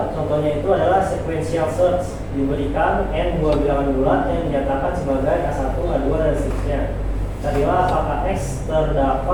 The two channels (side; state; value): both; identical; correlation 1.00